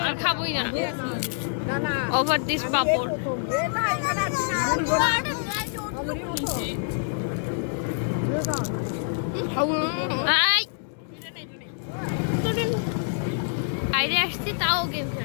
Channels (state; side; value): silent; right; digital silence